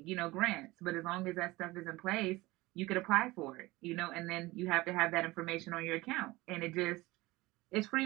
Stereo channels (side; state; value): left; quieter; 20.4 dB